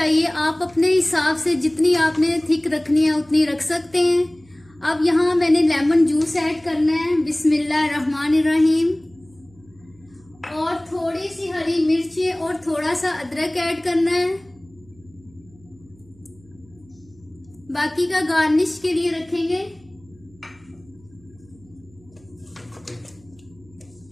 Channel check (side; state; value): right; noise; hum, 28 dB below the sound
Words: आप अपने हिसाब से जितनी आपने थिक रखनी है उतनी रख सकते हैं। अब यहाँ मैंने लेमन जूस ऐड करना है, बिस्मिल्लाहिर्रहमानिर्रहीम, और थोड़ी सी हरी मिर्च और थोड़ा सा अदरक ऐड करना है। बाकी का गार्निश के लिए रखेंगे।